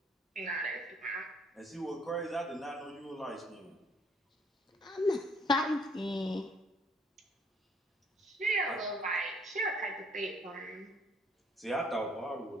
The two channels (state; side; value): normal; both; correlation 0.63